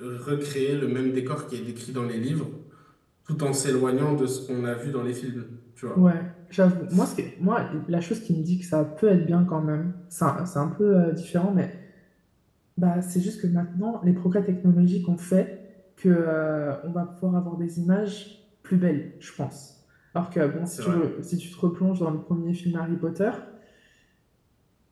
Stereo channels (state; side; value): identical; both; correlation 1.00